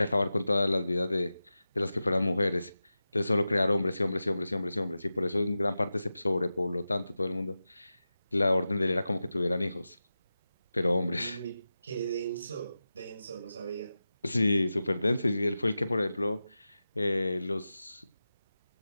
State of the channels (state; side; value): inverted; both; correlation -0.94